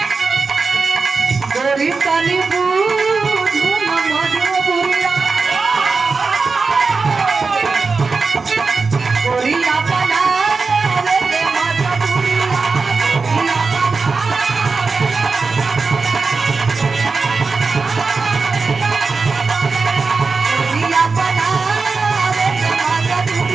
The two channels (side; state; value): left; quieter; 4.4 dB